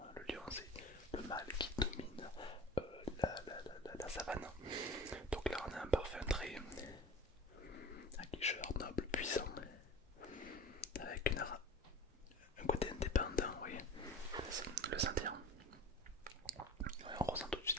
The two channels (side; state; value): both; normal; correlation 0.37